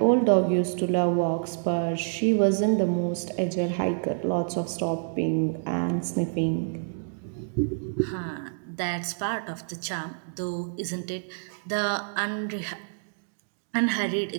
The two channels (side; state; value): left; silent; digital silence